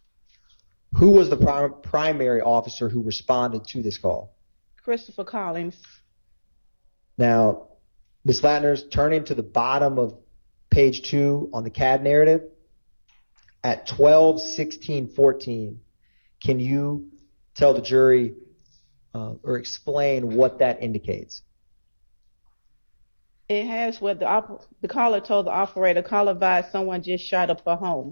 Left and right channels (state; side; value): inverted; both; correlation -1.00